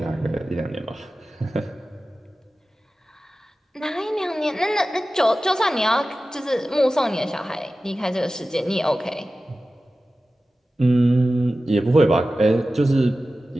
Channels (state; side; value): normal; both; correlation 0.95